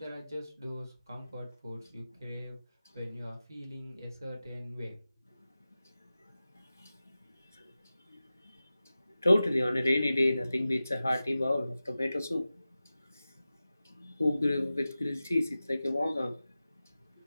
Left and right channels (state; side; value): inverted; both; correlation -0.95